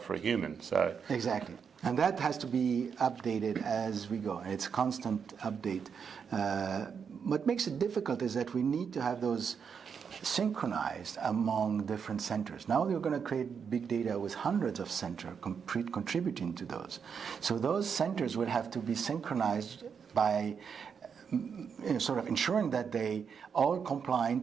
for a human. So exactly. And that has to be updated as we go. And it's constant update. What makes it difficult is that we need to have those synchronized among different centers. Now we're going to create big data with hundreds of centers contributing to those. So those centers will have to be synchronized by sort of ensuring that they all comply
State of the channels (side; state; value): left; quieter; 6.6 dB